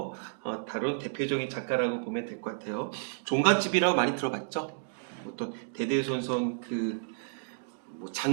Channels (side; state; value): left; silent; digital silence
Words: 다룬 대표적인 작가라고 보면 될 것 같아요. 종갓집이라고 많이 들어봤죠? 어떤 대대손손